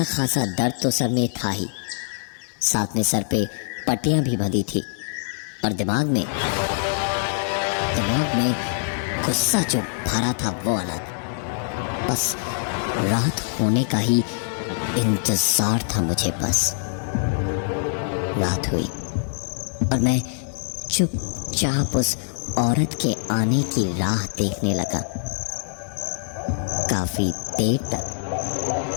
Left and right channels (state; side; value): silent; right; digital silence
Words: खासा दर्द तो सर में था ही, साथ में सर पे पट्टियां भी बंधी थी और दिमाग में गुस्सा जो भरा था वो अलग। बस रात होने का ही इंतजार था मुझे। बस रात हुई और मैं चुपचाप उस औरत के आने की राह देखने लगा। काफी देर तक